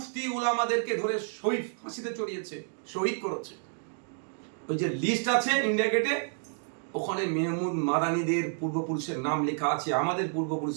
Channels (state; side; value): silent; left; 58 dB below the other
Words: উলামাদেরকে ধরে শহীদ ফাঁসিতে চড়িয়েছে, শহীদ করেছে। ওই যে লিস্ট আছে ইন্ডিয়া গেটে, ওখানে মেহমুদ মাদানীদের পূর্বপুরুষের নাম লেখা আছে, আমাদের